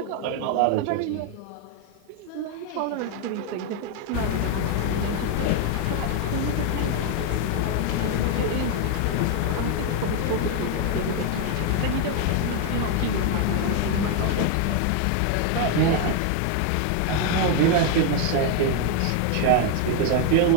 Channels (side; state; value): both; different; correlation 0.01